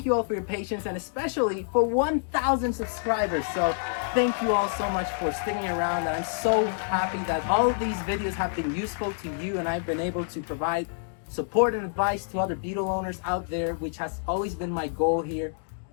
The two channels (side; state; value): right; silent; digital silence